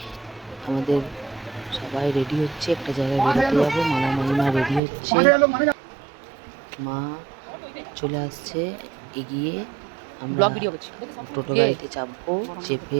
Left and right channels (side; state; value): left; drops out; at 4.8 s